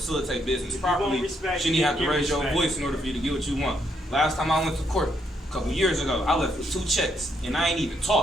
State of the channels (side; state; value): both; normal; correlation 0.75